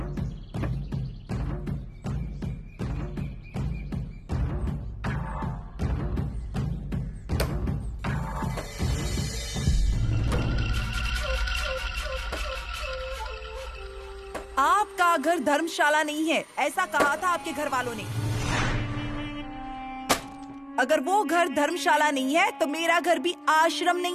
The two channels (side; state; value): both; identical; correlation 1.00